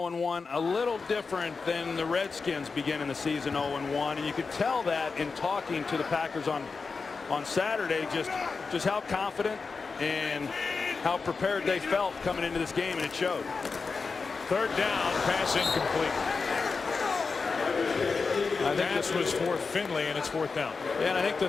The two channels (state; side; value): quieter; right; 4.6 dB